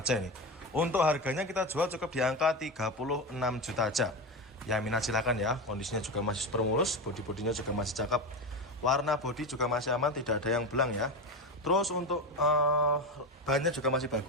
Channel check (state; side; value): normal; both; correlation 0.19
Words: ini. Untuk harganya kita jual cukup di angka 36 juta aja. Ya, minat silakan ya. Kondisinya juga masih super mulus, bodi-bodinya juga masih cakep. Warna bodi juga masih aman, tidak ada yang belang ya. Terus untuk bannya juga masih